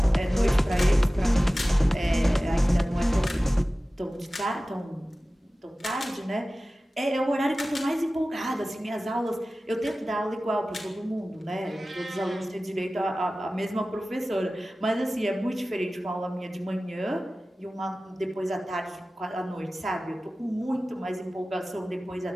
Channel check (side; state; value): both; normal; correlation 0.96